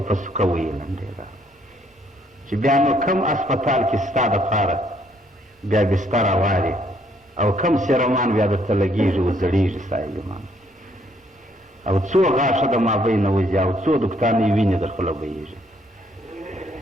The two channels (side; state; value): both; normal; correlation 0.68